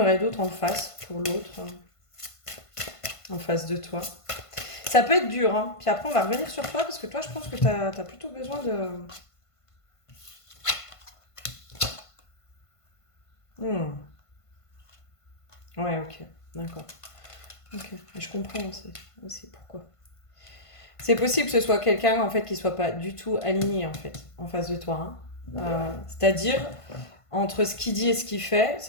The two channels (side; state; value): right; late; 1.5 ms